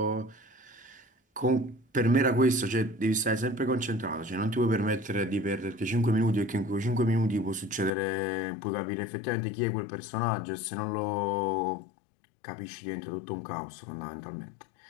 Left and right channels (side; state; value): right; drops out; at 8.0 s